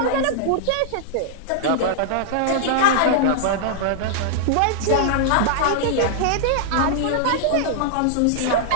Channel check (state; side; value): different; both; correlation -0.01